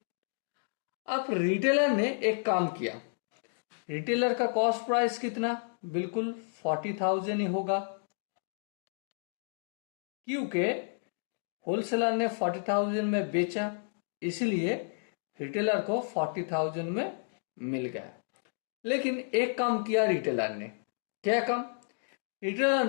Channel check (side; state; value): right; silent; digital silence